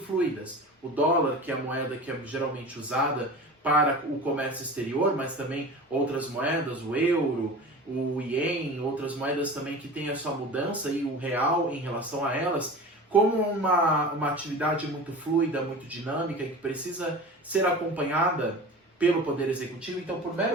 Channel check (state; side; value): normal; both; correlation 0.35